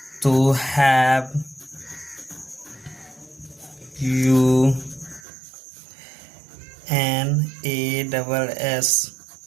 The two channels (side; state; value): left; drops out; at 5.2 s